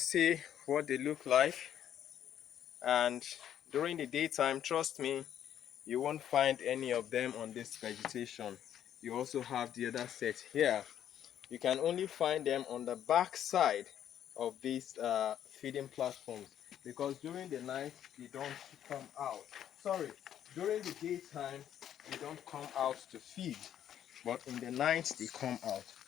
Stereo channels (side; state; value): right; quieter; 10.3 dB